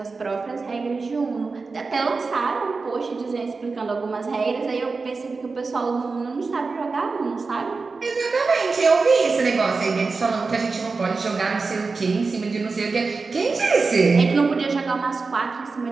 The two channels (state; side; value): quieter; left; 4.2 dB